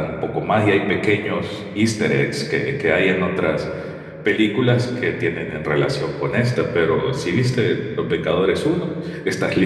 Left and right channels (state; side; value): identical; both; correlation 1.00